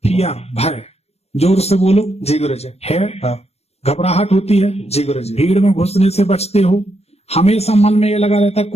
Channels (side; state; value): right; late; 0.31 ms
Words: फियर, भय। जोर से बोलो। जी गुरु जी। है, हाँ। घबराहट होती है, जी गुरु जी। भीड़ में घुसने से बचते हो, हमेशा मन में ये लगा रहता है